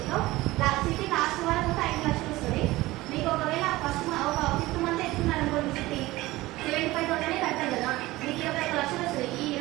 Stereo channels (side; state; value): left; quieter; 18.7 dB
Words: సిటీ లాస్ట్ వరకు ఒక 5 లక్షలు వస్తుంది. మీకు ఒకవేళ ఫస్ట్ ఒక 5th మంత్ ఎత్తుకున్నారు అనుకోండి, సిటీ 75,000 కట్టారు కదా, మీకు 21 లక్షలు వస్తుంది. ఈ